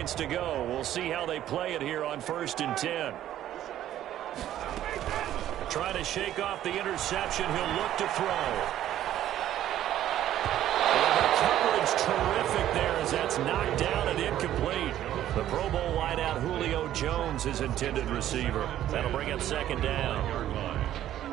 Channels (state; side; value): quieter; left; 12.3 dB